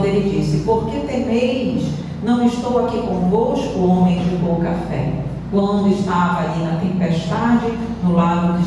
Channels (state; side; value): identical; both; correlation 1.00